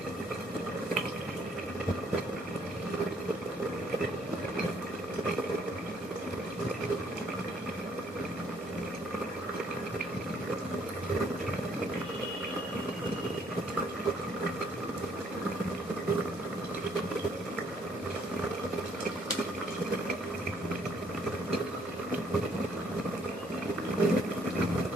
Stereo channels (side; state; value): both; normal; correlation 0.66